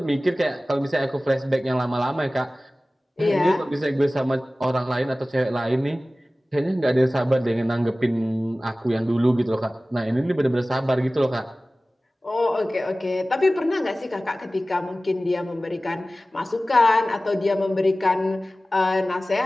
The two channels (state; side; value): normal; both; correlation 0.97